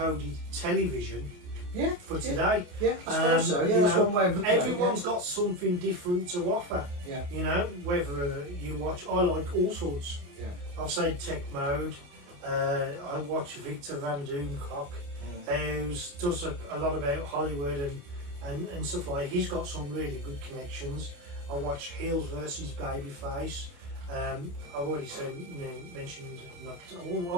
television. Yeah, for today. Yeah, I suppose so. Yeah, that's one way of looking at it. Everyone's got something different to offer. Yeah. You know, whether you watch, I like all sorts. Yeah. I'll say Tech Mode. I watch Victor Van Doomcock, who does a lot about Hollywood and stuff like that. He's got some really good connections. I watch Heels versus Babyface. I've already mentioned,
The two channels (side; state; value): left; late; 28 ms